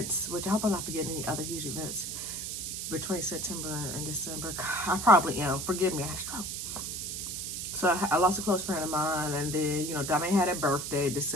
which I hope I'm not forgetting any other huge events between September and December. I probably am. Forgive me, I had a stroke. So I lost a close friend of mine, and then, you know, Dami had a birthday in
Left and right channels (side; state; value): right; noise; hiss, 5 dB below the sound